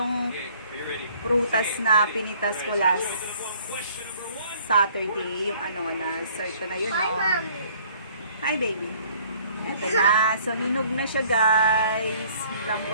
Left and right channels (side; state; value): both; inverted; correlation -0.57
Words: prutas na pinitas ko last Saturday, yung na-start ko na yun, no? Hi baby! Ito na. So, hinog na siya guys.